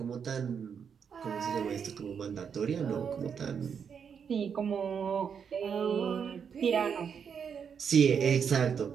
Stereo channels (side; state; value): left; quieter; 7.0 dB